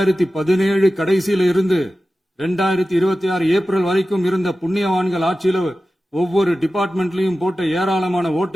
கடைசியில இருந்து 2026 ஏப்ரல் வரைக்கும் இருந்த புண்ணியவான்கள் ஆட்சியில ஒவ்வொரு டிபார்ட்மெண்ட்லயும் போட்ட ஏராளமான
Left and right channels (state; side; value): normal; both; correlation 0.95